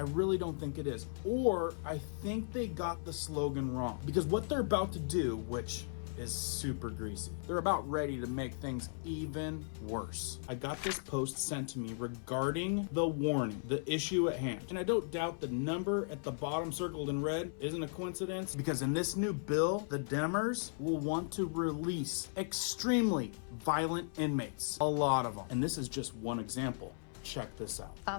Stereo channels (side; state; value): right; silent; 53 dB below the other